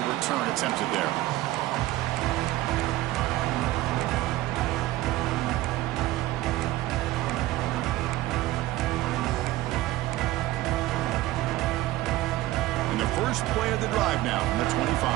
return attempted there. And the first play of the drive now from the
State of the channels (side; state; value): left; quieter; 16.7 dB